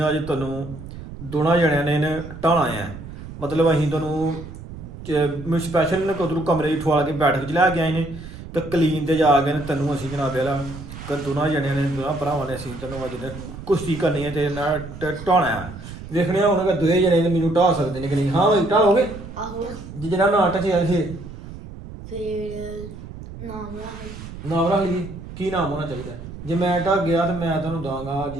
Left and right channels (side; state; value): right; noise; rumble, 13 dB below the sound